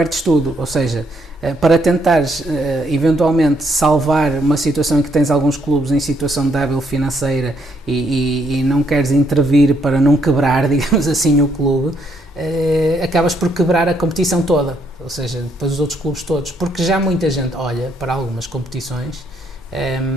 tudo, ou seja, para tentares eventualmente salvar uma situação em que tens alguns clubes em situação débil financeira e não queres intervir para não quebrar, digamos assim, o clube, acabas por quebrar a competição toda, ou seja, depois os outros clubes todos, porque já muita gente olha para algumas competições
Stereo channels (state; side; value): normal; both; correlation 0.72